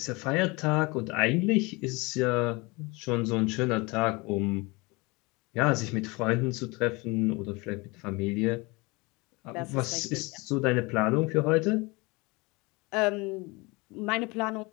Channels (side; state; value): right; quieter; 25.5 dB